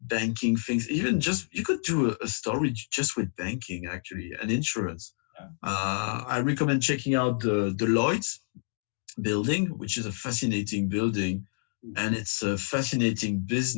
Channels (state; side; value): silent; right; digital silence